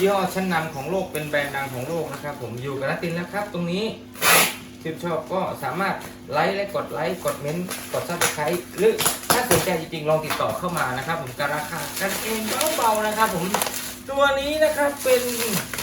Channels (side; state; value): both; identical; correlation 1.00